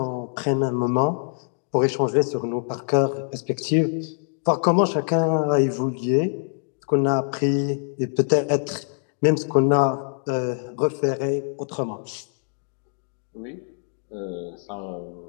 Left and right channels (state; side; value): silent; right; 62 dB below the other